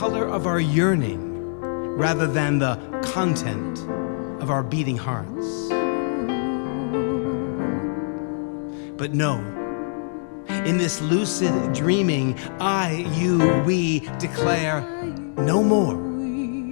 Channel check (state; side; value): silent; right; digital silence